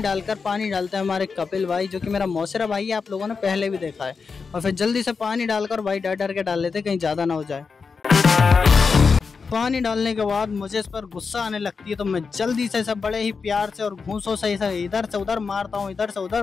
डालते हैं हमारे कपिल भाई, जो कि मेरा मौसेरा भाई है, आप लोगों ने पहले भी देखा है। और फिर जल्दी से पानी डालकर भाई डर डर के डाल लेते कहीं ज़्यादा ना हो जाए। पानी डालने के बाद मुझे इस पर गुस्सा आने लगती है, तो मैं जल्दी से इसे बड़े ही प्यार से और घूंसों से इसे इधर से उधर मारता हूँ, इधर से उधर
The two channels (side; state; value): right; quieter; 5.1 dB